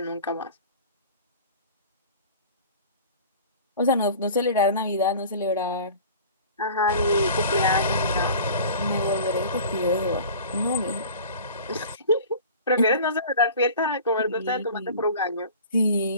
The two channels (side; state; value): both; inverted; correlation -0.41